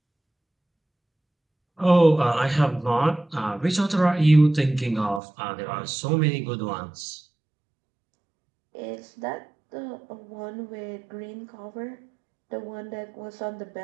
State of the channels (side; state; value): left; drops out; at 5.2 s